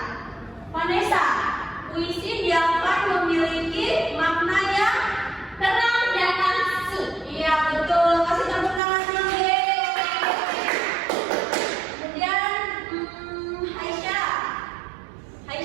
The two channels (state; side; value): drops out; left; at 8.8 s